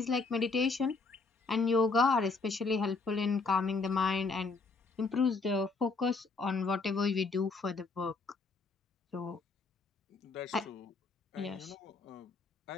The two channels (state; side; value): quieter; right; 4.0 dB